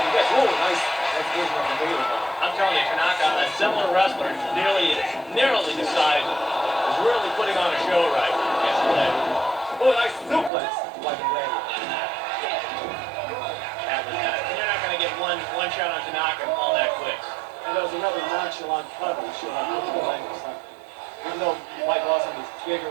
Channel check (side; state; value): left; drops out; at 10.5 s